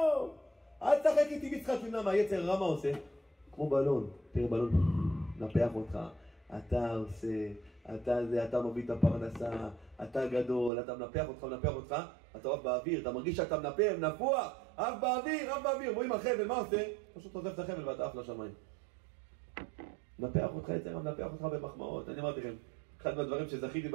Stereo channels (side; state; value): left; drops out; at 10.7 s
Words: אל תשחק איתי משחק. למה היצר רע מה עושה? כמו בלון, תראה בלון, נפח אותך, אתה עושה, אתה מביא את הפרנסה, אתה גדול, אתה מנפח אותך, אתה עף באוויר, אתה מרגיש שאתה נפוח, עף באוויר, רואים החבל, מה עושה? פשוט עוזב את החבל ואתה עף לשמיים. מנפח אותך יצר, מנפח אותך במחמאות. אני אמרתי לכם, אחד מהדברים שזכיתי